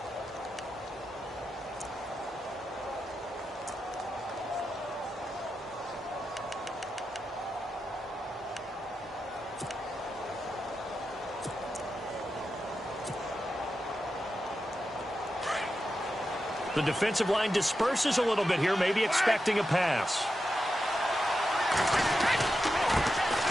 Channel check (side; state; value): both; normal; correlation 0.89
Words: The defensive line disperses a little bit here, maybe expecting a pass.